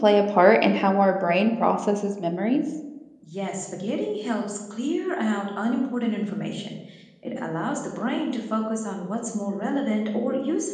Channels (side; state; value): both; identical; correlation 1.00